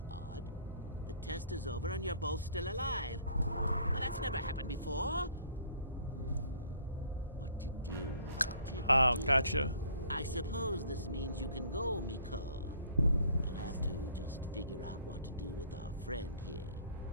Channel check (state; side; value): inverted; both; correlation -0.56